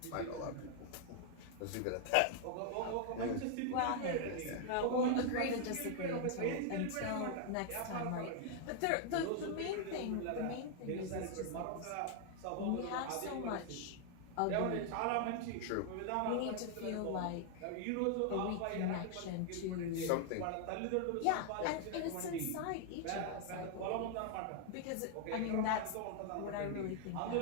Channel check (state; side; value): different; both; correlation 0.00